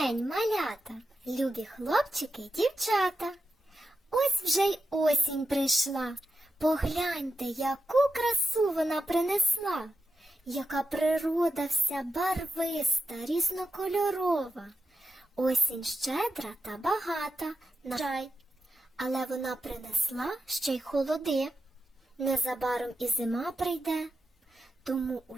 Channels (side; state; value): both; normal; correlation 0.89